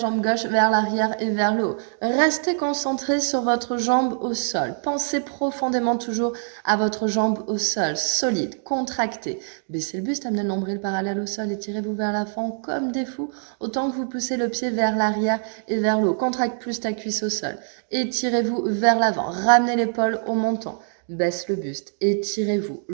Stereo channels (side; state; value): left; silent; digital silence